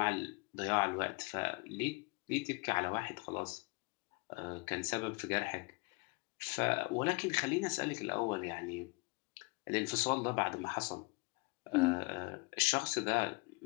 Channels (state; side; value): quieter; right; 27.8 dB